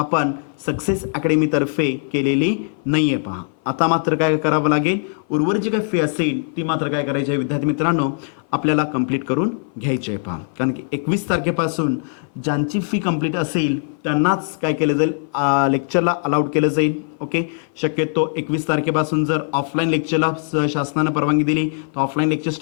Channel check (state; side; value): silent; right; 58 dB below the other